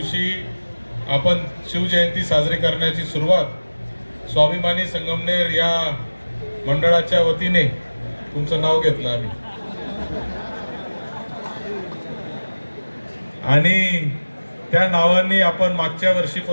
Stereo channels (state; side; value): inverted; both; correlation -1.00